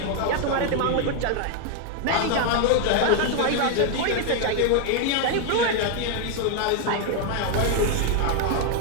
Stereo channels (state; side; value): different; both; correlation 0.00